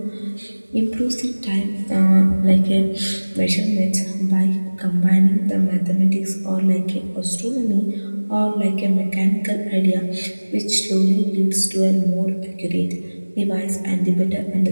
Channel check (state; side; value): inverted; both; correlation -1.00